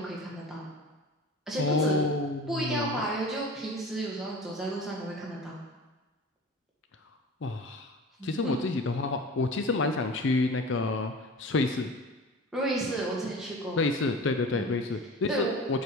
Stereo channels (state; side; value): normal; both; correlation 0.37